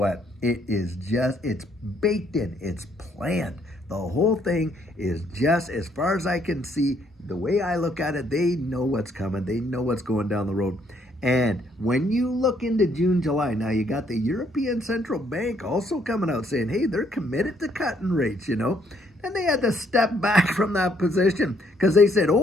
it's baked in, it's planned. The whole thing is just, as far as I can see, the way I look at it, they know what's coming. They know what's going down the road. And when you look into June, July, now you got the European Central Bank also coming out saying, hey, they're committed to cutting rates, And they had to step back from that position because they said,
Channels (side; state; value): both; normal; correlation 0.69